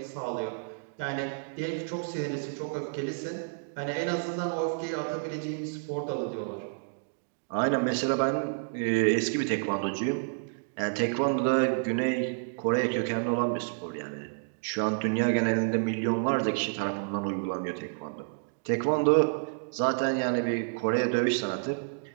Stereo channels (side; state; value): left; silent; digital silence